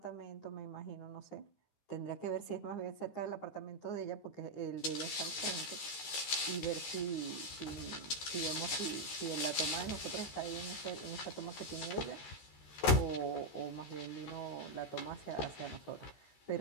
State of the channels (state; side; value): late; right; 13 ms